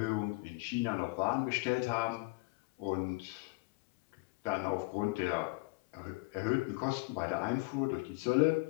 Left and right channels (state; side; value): quieter; right; 26.0 dB